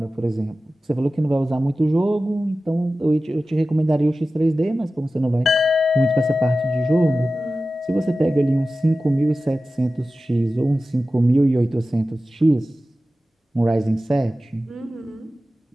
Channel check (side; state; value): both; normal; correlation 0.95